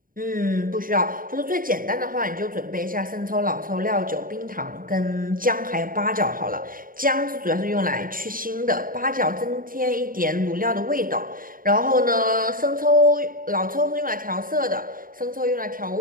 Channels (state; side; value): late; left; 0.41 ms